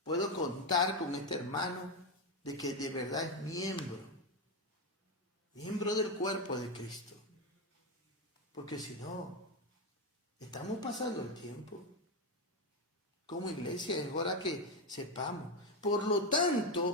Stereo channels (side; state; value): both; normal; correlation 0.09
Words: puedo contar con este hermano de que de verdad es miembro del cuerpo de Cristo. Porque si no, estamos pasando el tiempo. como iglesia, es hora que sepamos. Por lo